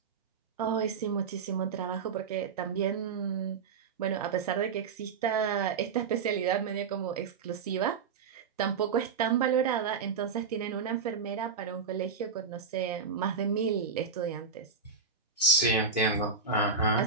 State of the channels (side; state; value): left; quieter; 5.4 dB